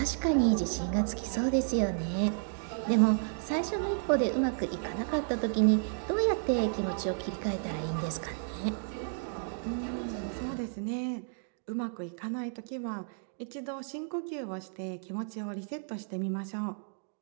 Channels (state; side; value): silent; left; digital silence